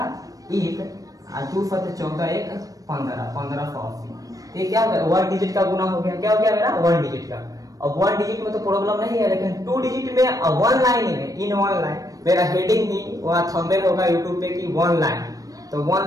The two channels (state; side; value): late; left; 0.17 ms